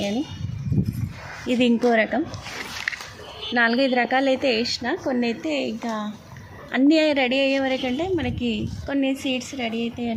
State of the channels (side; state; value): both; identical; correlation 1.00